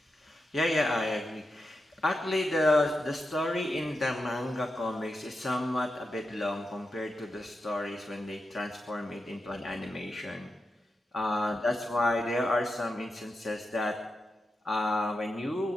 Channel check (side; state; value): both; normal; correlation 0.88